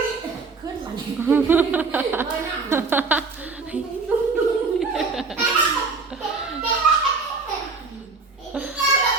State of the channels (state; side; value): quieter; left; 4.2 dB